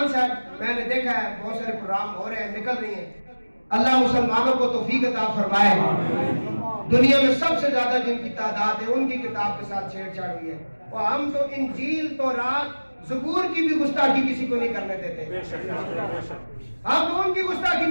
سے میں نے دیکھا ہے بہت سارے پروگرام ہو رہے ہیں, نکل رہی ہیں. اللہ مسلمانوں کو توفیق عطا فرمائے. دنیا میں سب سے زیادہ جن کی تعداد ہے ان کی کتاب کے ساتھ چھیڑ چھاڑ ہوئی ہے, اور ہم تو انجیل تورات زبور کی بھی گستاخی کسی کو نہیں کرنے دیتے. ہم تو ان کی گستاخی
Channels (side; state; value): both; inverted; correlation -1.00